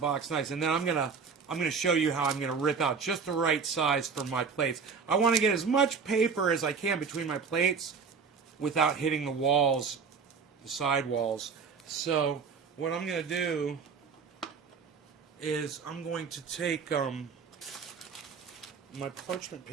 box nice. And then I'm going to show you how I'm going to rip out just the right size for my plates. I want to get as much paper as I can between my plates without hitting the walls, the side walls. So what I'm going to do is I'm going to take my parchment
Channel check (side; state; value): left; quieter; 5.5 dB